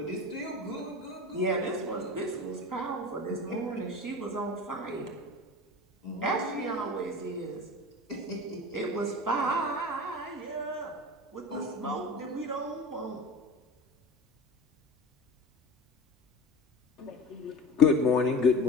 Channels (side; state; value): both; normal; correlation 0.34